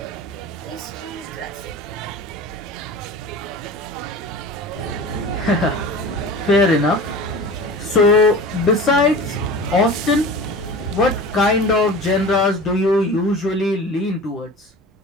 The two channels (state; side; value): normal; both; correlation 0.35